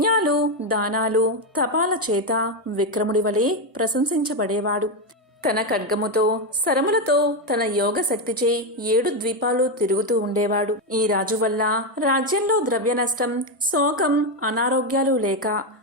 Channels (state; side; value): normal; both; correlation 0.07